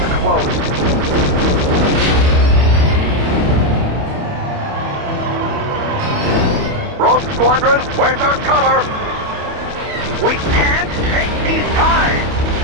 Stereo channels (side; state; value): left; late; 28 ms